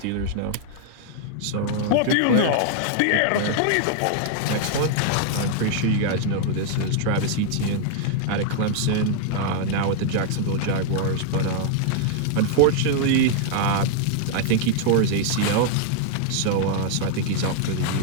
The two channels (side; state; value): both; different; correlation -0.01